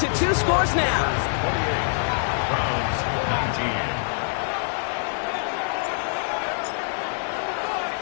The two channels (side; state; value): right; silent; digital silence